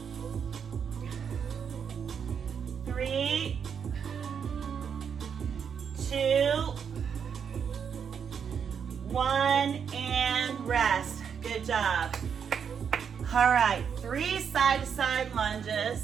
3, 2, 1, and rest. Good job. All right, 3 side-to-side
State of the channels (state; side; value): quieter; left; 7.2 dB